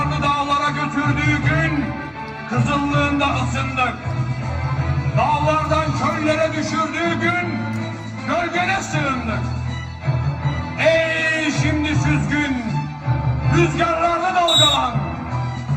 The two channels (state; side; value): identical; both; correlation 1.00